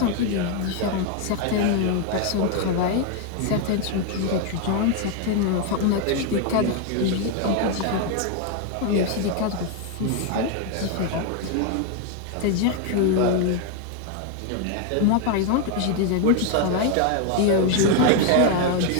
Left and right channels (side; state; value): both; different; correlation 0.01